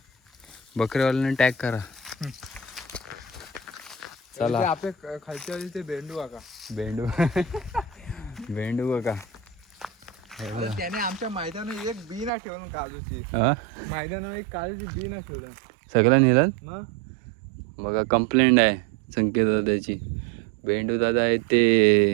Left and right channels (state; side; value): drops out; left; at 12.3 s